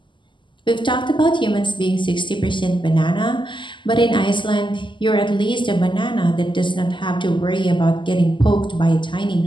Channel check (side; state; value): right; late; 0.24 ms